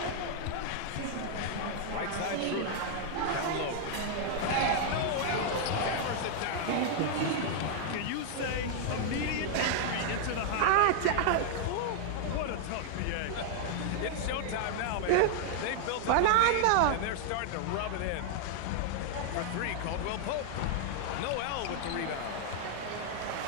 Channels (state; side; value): different; both; correlation 0.00